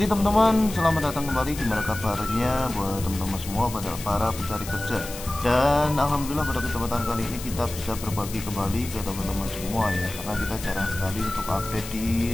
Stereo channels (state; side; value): noise; left; hiss, 12 dB below the sound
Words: teman-teman, selamat datang kembali. Gimana kabarnya buat teman-teman semua, pada para pencari kerja? Dan alhamdulillah pada kesempatan kali ini kita bisa berbagi kembali ke teman-teman semua ya, karena kita jarang sekali untuk update